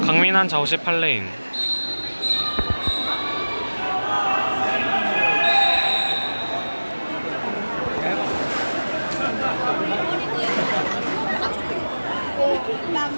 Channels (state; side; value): inverted; both; correlation -1.00